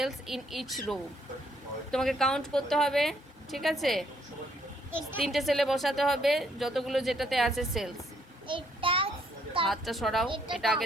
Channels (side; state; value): both; normal; correlation 0.69